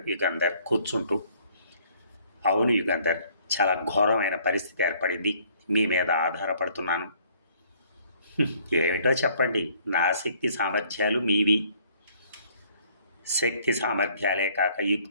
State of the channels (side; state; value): both; inverted; correlation -0.61